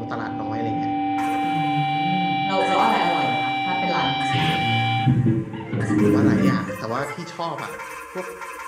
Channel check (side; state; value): both; identical; correlation 1.00